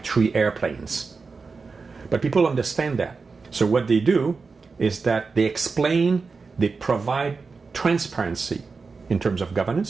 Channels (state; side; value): quieter; left; 4.6 dB